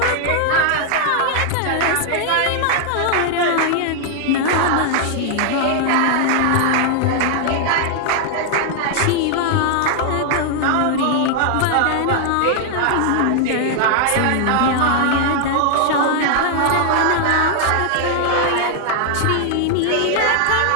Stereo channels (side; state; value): both; different; correlation 0.00